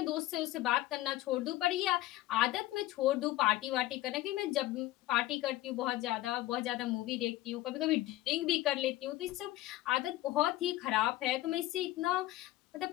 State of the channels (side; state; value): right; quieter; 16.4 dB